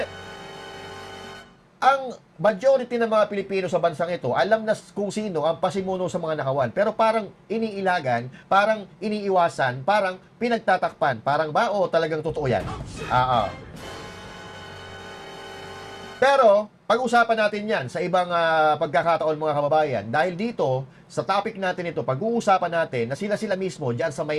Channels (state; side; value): identical; both; correlation 1.00